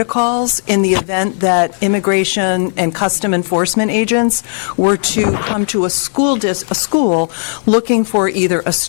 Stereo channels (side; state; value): right; silent; digital silence